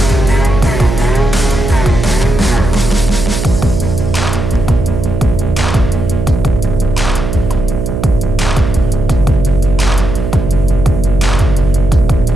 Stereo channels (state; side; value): noise; right; hum, 4 dB below the sound